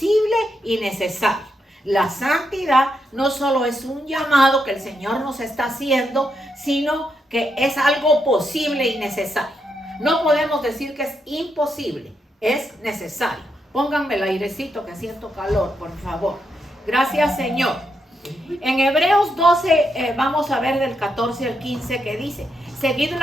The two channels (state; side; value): normal; both; correlation 0.81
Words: y necesario. La santidad no solo es un llamado que el Señor nos está haciendo, sino que es algo posible y necesario. No podemos decir que es imposible, es necesario. Pónganme el airecito que siento calor, por favor. Gracias, Señor. En Hebreos 12 vamos a ver del 14 al 15 que dice: seguid